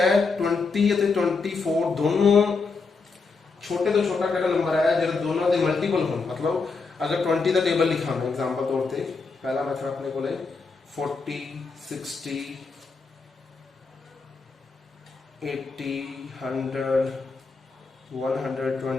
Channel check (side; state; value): right; quieter; 4.4 dB